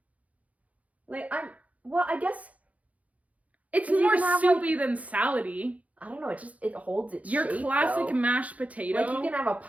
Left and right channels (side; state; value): left; late; 0.069 ms